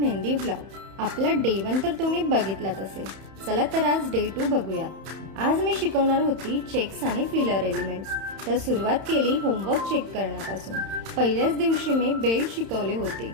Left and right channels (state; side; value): late; left; 31 ms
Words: vlog. आपला day 1 तर तुम्ही बघितलाच असेल. चला तर आज डे 2 बघूयात. आज मी शिकवणार होती चेक्स आणि फिलर एलिमेंट्स. तर सुरुवात केली होमवर्क चेक करण्यापासून. पहिल्याच दिवशी मी बेल्ट शिकवले होते.